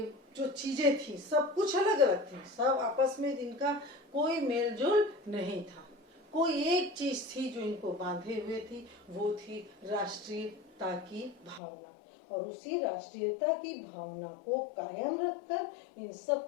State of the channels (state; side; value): drops out; right; at 11.6 s